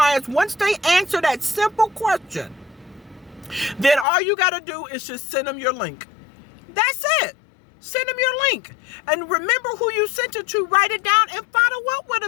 Once they answer that simple question, then all you got to do is just send them your link. That's it. Send them your link. And remember who you sent it to. Write it down and follow up with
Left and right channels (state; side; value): drops out; right; at 4.0 s